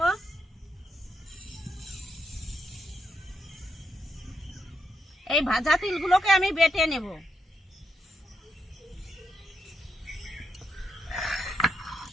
এই ভাজা তিলগুলোকে আমি বেটে নেব।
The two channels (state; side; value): normal; both; correlation 0.81